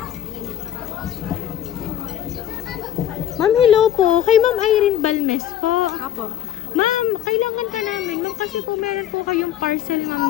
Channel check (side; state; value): right; quieter; 10.7 dB